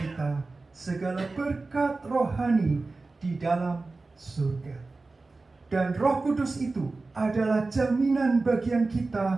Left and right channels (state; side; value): quieter; left; 3.6 dB